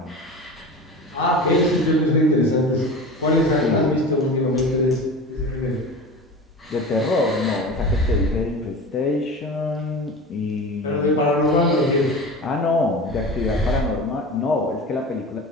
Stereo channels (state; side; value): normal; both; correlation 0.32